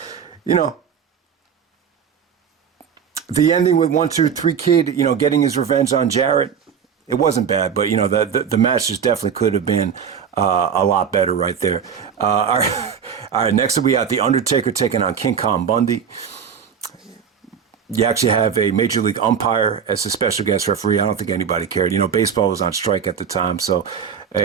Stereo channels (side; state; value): left; quieter; 7.3 dB